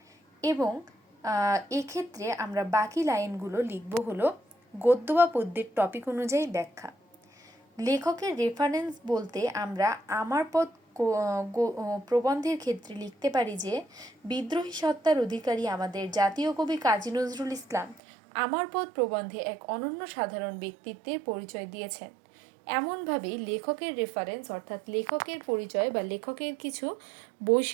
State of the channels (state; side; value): drops out; left; at 18.0 s